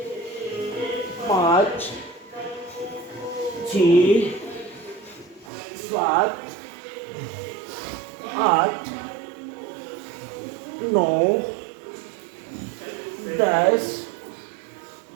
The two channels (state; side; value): drops out; left; at 5.5 s